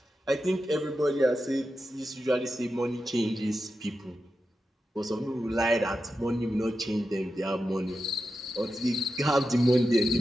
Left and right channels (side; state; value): both; normal; correlation 0.90